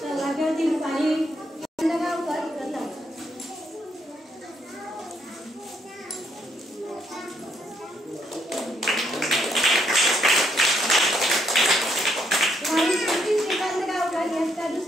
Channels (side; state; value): both; normal; correlation 0.73